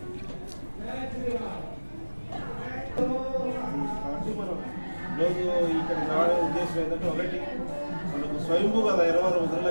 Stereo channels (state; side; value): inverted; both; correlation -1.00